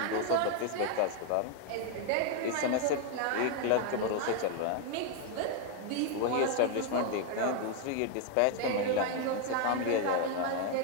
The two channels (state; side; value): different; both; correlation 0.00